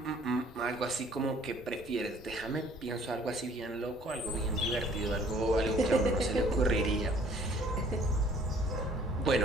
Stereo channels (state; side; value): normal; both; correlation 0.57